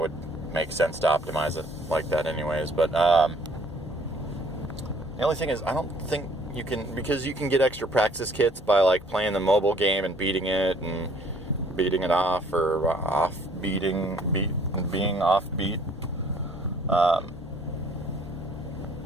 make sense to optimize it like that anyways, but the only thing is I don't think you can, because you can get extra practice kits by like playing the mobile game and beating it off, or being offbeat.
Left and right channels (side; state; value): both; normal; correlation 0.59